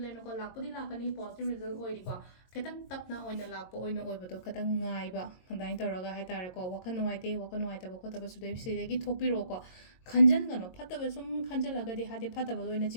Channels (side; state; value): right; late; 22 ms